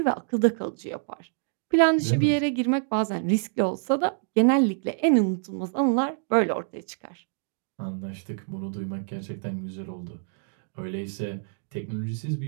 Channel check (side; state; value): left; silent; digital silence